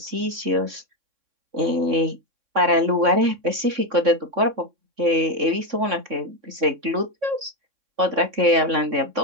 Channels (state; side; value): late; left; 3.6 ms